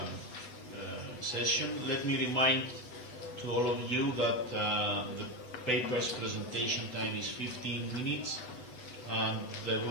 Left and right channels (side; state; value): right; late; 8.0 ms